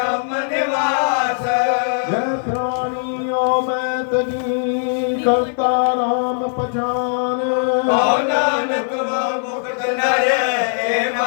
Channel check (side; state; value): right; silent; 60 dB below the other